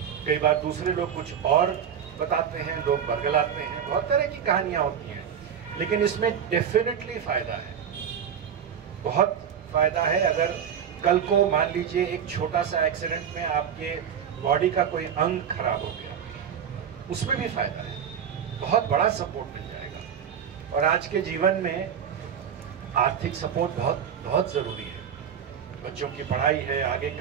कई बार दूसरे लोग कुछ और बताते हैं, लोग बरगलाते हैं, बहुत तरह की कहानियां होती हैं। लेकिन इसमें डेफिनेटली फायदा है, बहुत फायदा है। अगर कल को मान लीजिए एक छोटा सा एक्सीडेंट में आपके बॉडी का कोई अंग खराब हो गया, उसमें भी फायदा है, बहुत बड़ा सपोर्ट मिल जाएगा। और आज के जीवन में आर्थिक सपोर्ट बहुत बहुत ज़रूरी है। बच्चों की पढ़ाई है, आगे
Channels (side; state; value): left; quieter; 8.2 dB